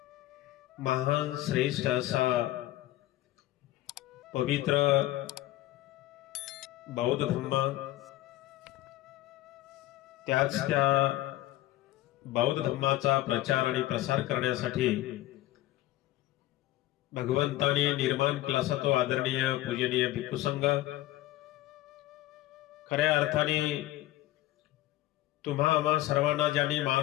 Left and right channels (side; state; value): right; quieter; 15.9 dB